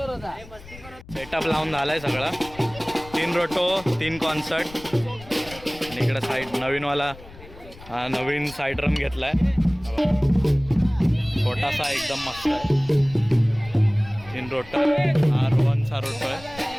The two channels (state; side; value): noise; left; rumble, 19 dB below the sound